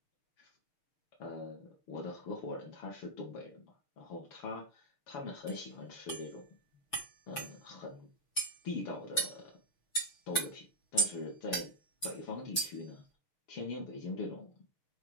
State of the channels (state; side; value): late; right; 6.0 ms